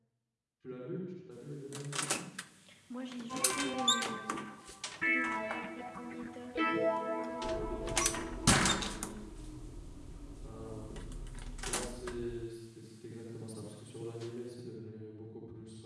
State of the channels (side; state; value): both; identical; correlation 1.00